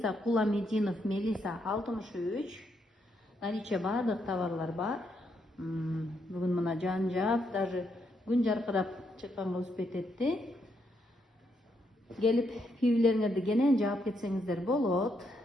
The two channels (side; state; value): both; normal; correlation 0.77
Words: Куламединов, Мелиса 63. Наличие бардык товарлар бар. Бүгүн мына жан-жак, даже күн жаркырап чыкканга успеть этти. Келип пивилериңерди кенен жаап кетсеңиздер болот.